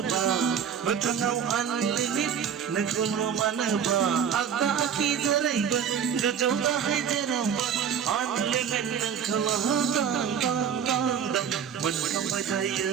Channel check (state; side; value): quieter; left; 7.8 dB